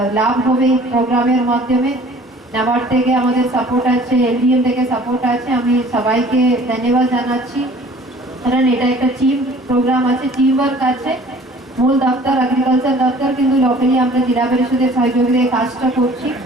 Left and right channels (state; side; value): normal; both; correlation 0.51